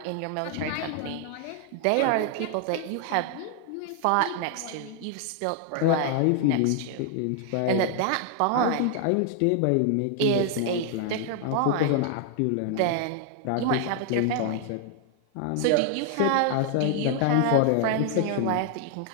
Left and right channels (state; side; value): different; both; correlation 0.00